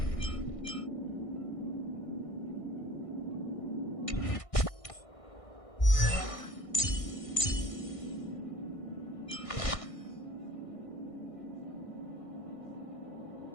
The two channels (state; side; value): late; right; 1.6 ms